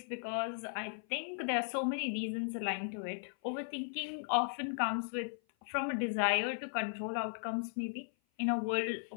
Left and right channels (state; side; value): silent; right; 53 dB below the other